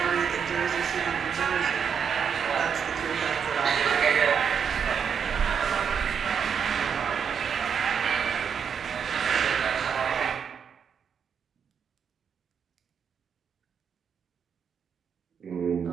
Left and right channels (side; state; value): left; quieter; 7.1 dB